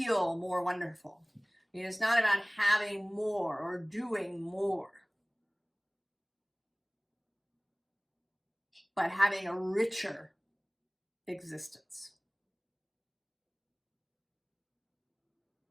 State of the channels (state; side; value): identical; both; correlation 1.00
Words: more wonderful. I mean, it's not about having more or doing more, but having a richer existence.